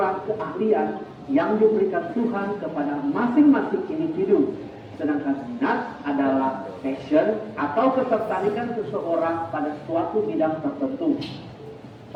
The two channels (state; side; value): identical; both; correlation 1.00